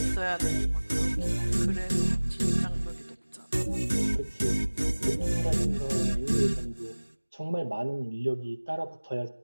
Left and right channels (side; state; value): both; inverted; correlation -1.00